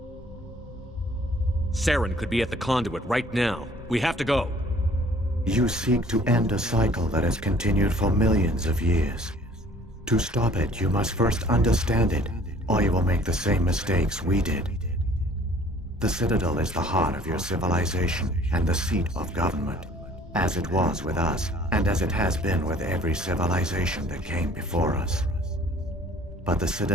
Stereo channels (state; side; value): normal; both; correlation 0.54